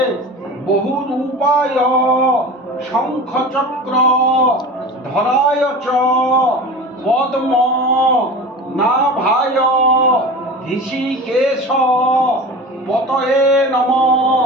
বহুরূপায় শঙ্খচক্র ধরায় চ পদ্ম নাভায় ঋষিকেশ পতয়ে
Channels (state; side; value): normal; both; correlation 0.33